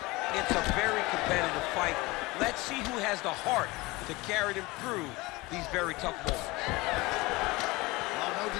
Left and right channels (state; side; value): quieter; right; 22.4 dB